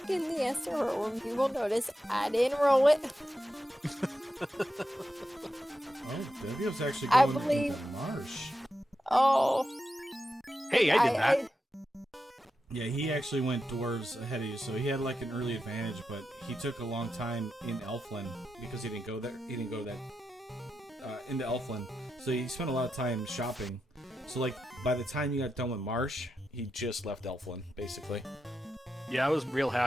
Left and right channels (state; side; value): normal; both; correlation 0.88